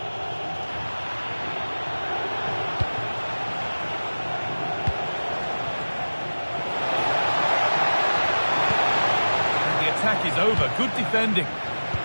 And the attack is over. Good defending.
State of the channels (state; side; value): inverted; both; correlation -1.00